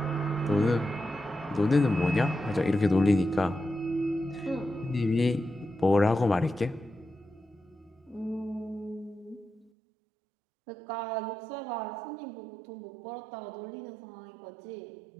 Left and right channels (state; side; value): drops out; left; at 9.7 s